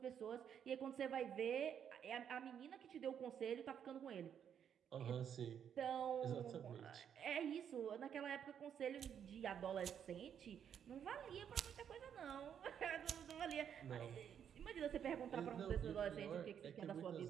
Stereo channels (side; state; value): left; quieter; 8.5 dB